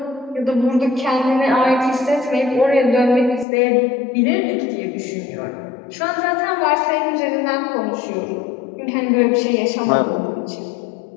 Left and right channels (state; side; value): drops out; right; at 3.5 s